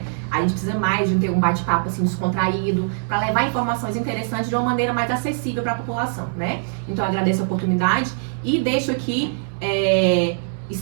A gente precisa mais de ter um bate-papo assim descontraído, para levar informações interessantes de uma maneira mais acessível para a população, né? Então eu agradeço a oportunidade e deixo aqui,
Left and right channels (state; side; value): silent; left; 64 dB below the other